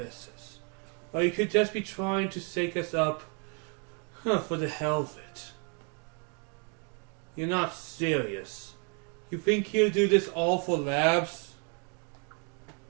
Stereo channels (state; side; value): quieter; left; 36.9 dB